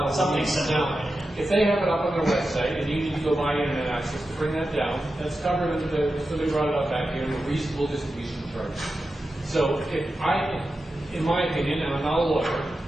Something similar. If they have it up on their website and you need to go buy internet access to bring that down, that's covered under so they brought it up back here in a reasonable distribution charge. So in my opinion, and I'm not a lawyer,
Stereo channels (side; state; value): both; normal; correlation 0.91